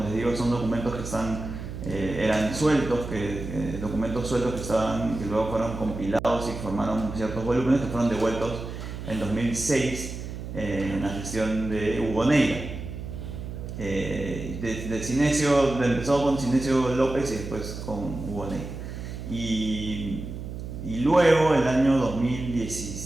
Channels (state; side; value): noise; right; hum, 8 dB below the sound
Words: digo, son documentos que eran sueltos, documentos sueltos que luego fueron compilados y formaron ciertos volúmenes que fueron devueltos en 2006 en la gestión de Hugo Neira. Empezó con Cinesio López y después con Hugo Neira. Y luego, el año